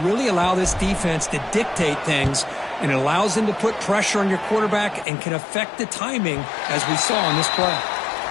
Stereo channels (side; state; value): right; drops out; at 5.1 s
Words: really allow this defense to dictate things, and it allows them to put pressure on your quarterback and can affect the timing, as we saw in this play.